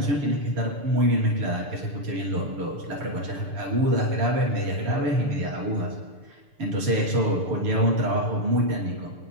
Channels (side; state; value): left; late; 6.8 ms